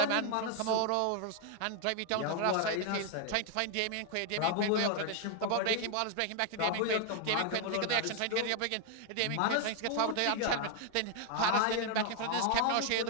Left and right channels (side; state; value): both; different; correlation 0.00